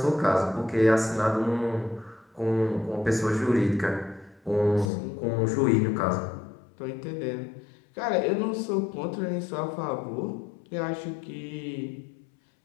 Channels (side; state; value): right; drops out; at 4.9 s